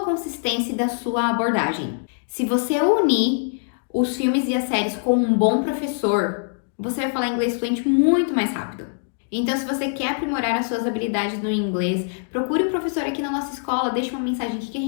e da sua abordagem. Se você unir os filmes e as séries com um bom professor, você vai falar inglês fluente muito mais rápido. Então, se você quer aprimorar as suas habilidades no inglês, procure um professor aqui na nossa escola, deixe uma mensagem aqui que a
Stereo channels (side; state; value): right; silent; digital silence